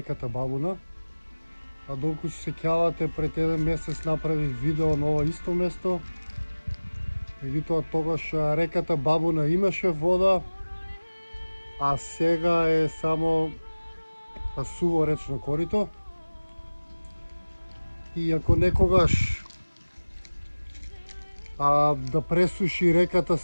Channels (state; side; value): inverted; both; correlation -1.00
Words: Бабуна. Долку се сеќавате, пред еден месец направив видео на ова исто место. Меѓутоа тогаш реката Бабуна имаше вода, а сега е само суво речно корито. И ако некогаш да пресуши реката